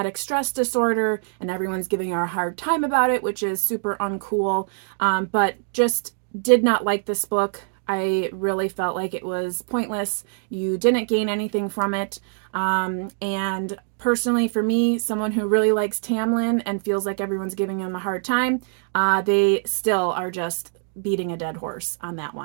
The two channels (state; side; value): silent; left; digital silence